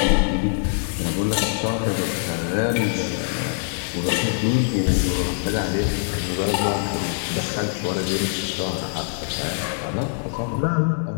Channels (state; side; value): silent; right; digital silence